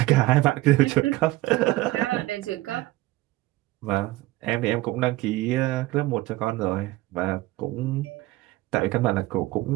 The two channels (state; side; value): quieter; left; 18.4 dB